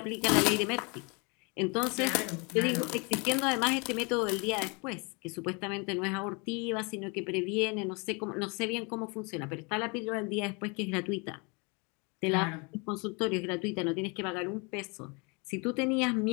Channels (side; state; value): right; quieter; 30.9 dB